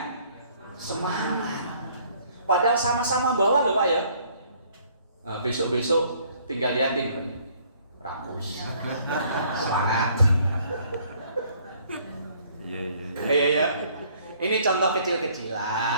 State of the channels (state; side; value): inverted; both; correlation -0.61